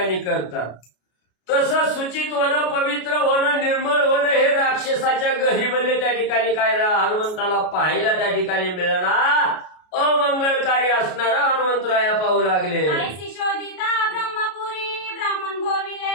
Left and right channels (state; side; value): late; right; 33 ms